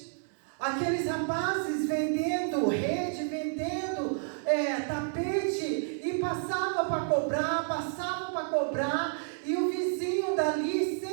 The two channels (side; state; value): left; silent; digital silence